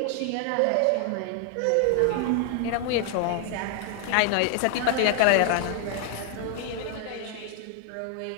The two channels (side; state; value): both; different; correlation 0.00